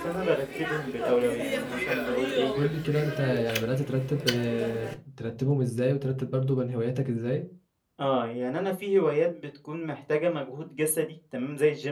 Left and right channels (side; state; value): both; identical; correlation 1.00